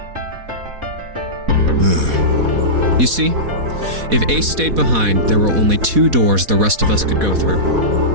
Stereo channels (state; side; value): late; left; 4.1 ms